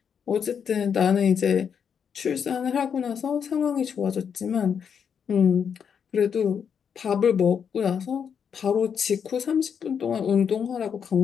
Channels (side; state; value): right; quieter; 7.3 dB